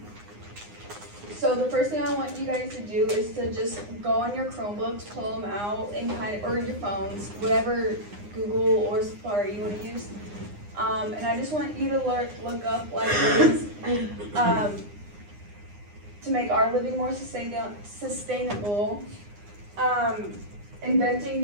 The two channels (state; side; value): late; left; 9.8 ms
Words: So the first thing I want you guys to do is to just go on your Chromebooks, pull them out, and or your phones, whatever Google or Safari you want to use. And I just want you to look up like ways to make our living more sustainable. Inventing